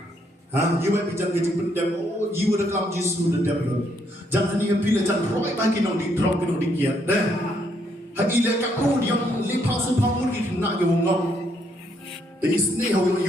You might be jangan kejing pendem. Oh, you ada kelam Yesus ada dem. Jangan ni pilih jangan roy bagi nong di drop nong di kiat deh. Hagi le kapu yang lepas sepamur itu nak ke wongong. Tapi sini hawi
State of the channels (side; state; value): both; normal; correlation 0.72